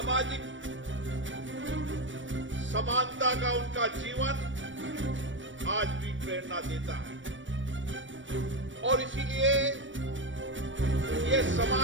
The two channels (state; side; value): late; left; 0.56 ms